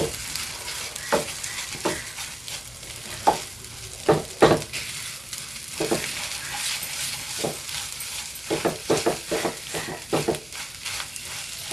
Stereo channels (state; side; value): noise; left; hum, 24 dB below the sound